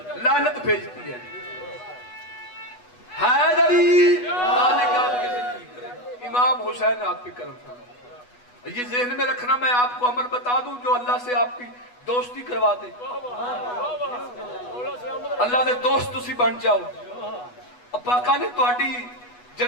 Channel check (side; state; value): right; late; 8.2 ms